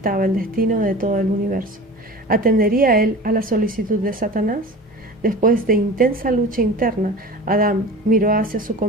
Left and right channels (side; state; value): both; normal; correlation 0.36